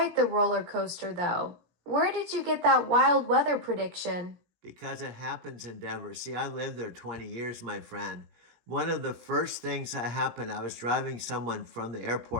the roller coaster, though. Where did you get that wild weather prediction? Because it happens in Denver. See, I lived there 20 years, my friend. One of the first things that happened, I was driving someone from the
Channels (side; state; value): left; late; 17 ms